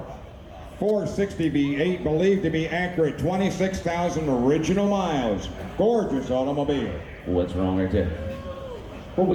460 V8, believed to be accurate, 26,000 original miles. Gorgeous automobile. What's wrong right there? What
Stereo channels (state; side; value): identical; both; correlation 1.00